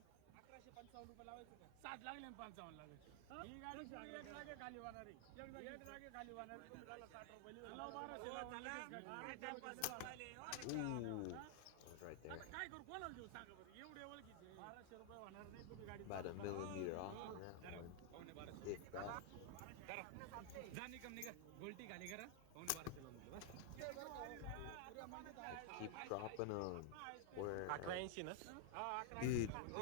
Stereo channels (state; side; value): different; both; correlation 0.00